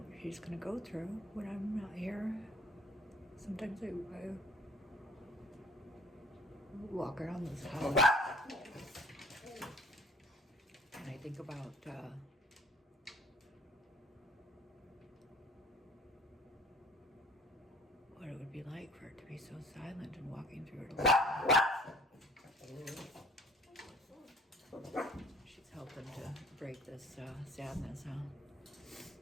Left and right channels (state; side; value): normal; both; correlation 0.53